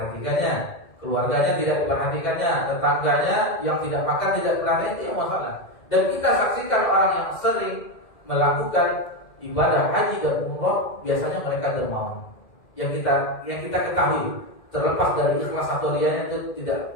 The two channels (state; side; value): late; right; 2.0 ms